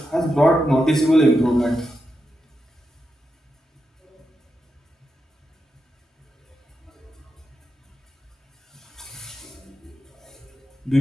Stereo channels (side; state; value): both; normal; correlation 0.87